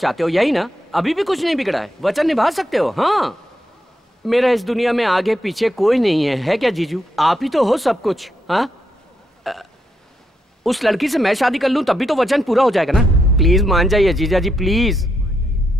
हो, यही ना? अभी भी कुछ नहीं बिगड़ा है, वचन निभा सकते हो। हाँ, मेरा इस दुनिया में आगे पीछे कोई नहीं है क्या जीजू? आप ही तो हो सब कुछ। हाँ, उस लड़की से मैं शादी कर लूं तब भी तो वचन पूरा हो जाएगा ना। प्लीज मान जाइए जीजा जी, प्लीज।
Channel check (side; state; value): both; normal; correlation 0.81